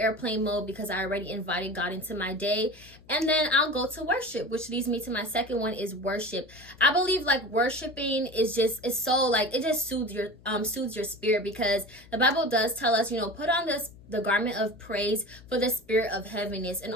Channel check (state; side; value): noise; left; hum, 24 dB below the sound